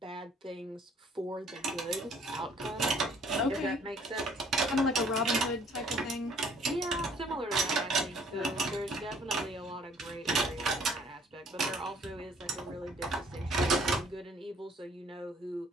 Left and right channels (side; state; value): both; normal; correlation 0.59